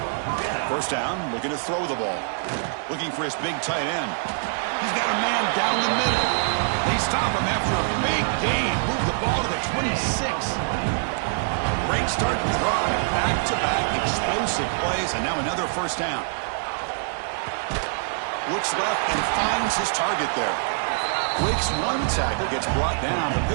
First down, looking to throw the ball. Looking for his big tight end. He's got a man down the middle. They stop him after a big gain. Move the ball to the 26. Great start to the drive. Back-to-back explosive plays, and now another first down. Looks left and finds his target there. Breaks one tackle, gets brought down, but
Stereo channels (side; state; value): left; silent; digital silence